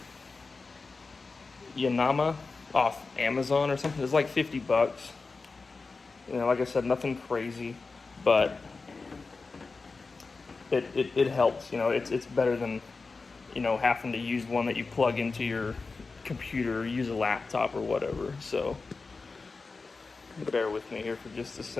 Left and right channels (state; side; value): quieter; right; 4.1 dB